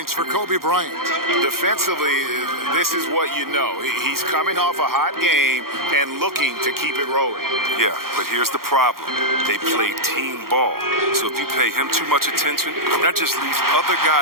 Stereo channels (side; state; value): left; late; 0.93 ms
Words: for Kobe Bryant. Defensively, this is what you know. He's coming off a hot game and looking to keep it rolling. Yeah, but here's the problem. They play team ball. So if you pay him too much attention, that just leaves other